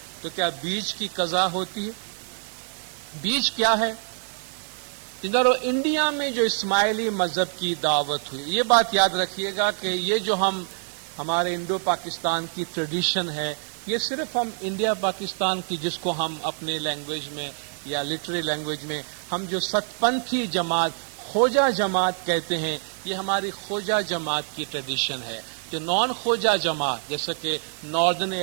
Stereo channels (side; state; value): left; silent; digital silence